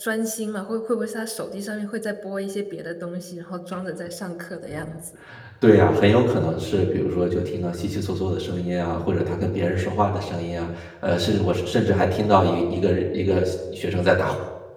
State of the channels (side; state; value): both; identical; correlation 1.00